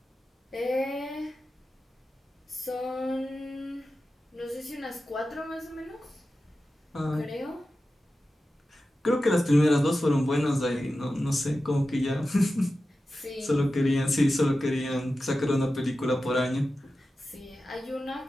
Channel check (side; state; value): both; normal; correlation 0.93